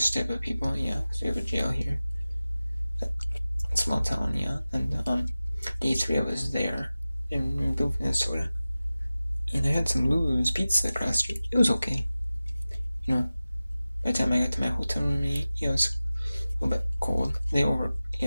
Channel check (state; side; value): inverted; both; correlation -0.96